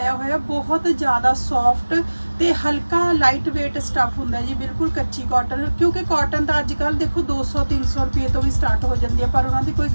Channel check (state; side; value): inverted; both; correlation -1.00